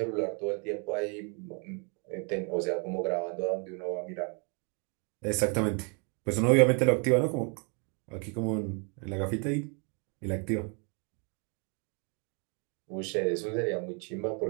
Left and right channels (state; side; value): quieter; left; 36.2 dB